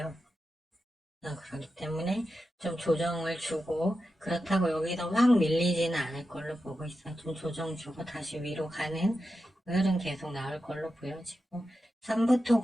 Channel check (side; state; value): both; normal; correlation 0.90